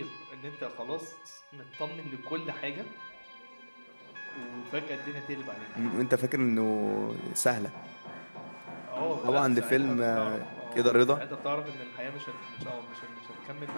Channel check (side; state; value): both; inverted; correlation -1.00